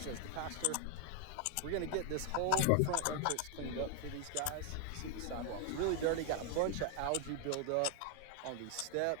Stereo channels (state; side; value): different; both; correlation 0.00